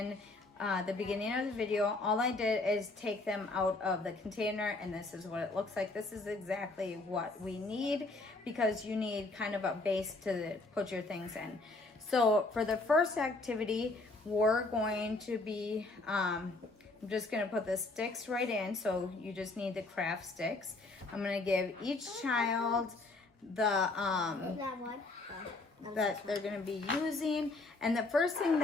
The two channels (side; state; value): right; quieter; 3.2 dB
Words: the beginning of the video. All I did is take them out of the container, and this is what it looks like. This is exactly what we need, because you need kind of a base to put your things in. So for the first activity, we're going to be, I'm just going to put the sticks right in. So you just need the craft sticks. I'm going to give each child the that they're going to be using, and the first thing